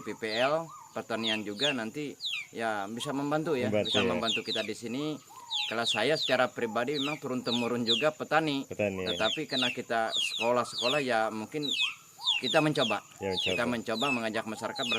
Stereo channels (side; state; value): both; identical; correlation 1.00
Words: PPL pertanian juga nanti ya bisa membantu ya, membantu kita di sini. Kalau saya secara pribadi memang turun temurun juga petani. Tetapi karena kita sekolah ya mungkin kita mencoba. Kita mencoba mengajak masyarakat